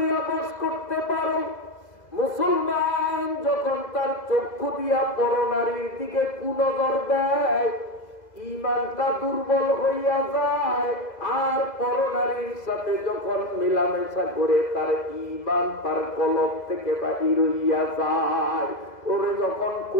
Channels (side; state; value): right; late; 2.0 ms